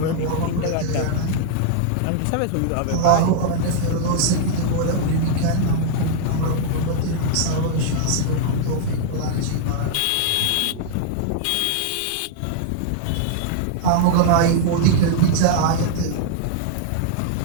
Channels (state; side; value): different; both; correlation -0.01